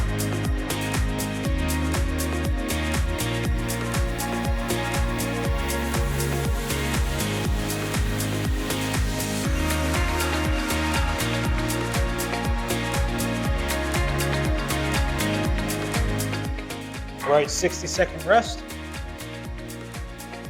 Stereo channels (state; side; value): identical; both; correlation 1.00